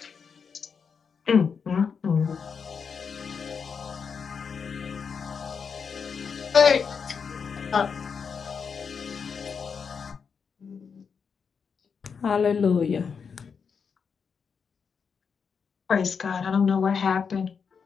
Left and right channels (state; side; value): quieter; right; 6.1 dB